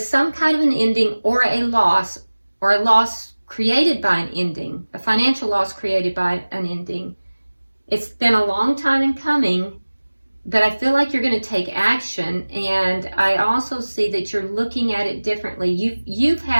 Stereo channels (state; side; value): inverted; both; correlation -1.00